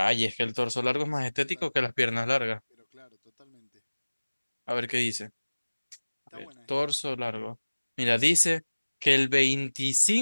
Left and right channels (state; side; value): inverted; both; correlation -1.00